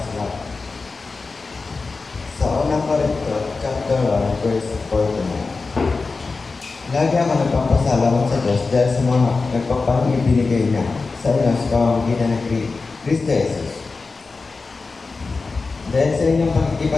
Sa unang Korinto, chapter 1, verse 49. Lagi ako nagpapasalamat sa Diyos dahil sa mga nagpapalang ibinigay niya sa inyo sa pamamagitan ng Kristo Jesus. Dahil sa inyong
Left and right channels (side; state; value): right; quieter; 4.1 dB